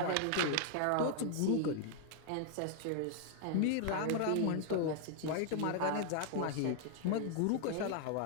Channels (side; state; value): both; different; correlation 0.00